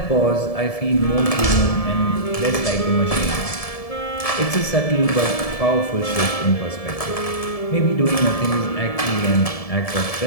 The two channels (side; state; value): right; late; 1.7 ms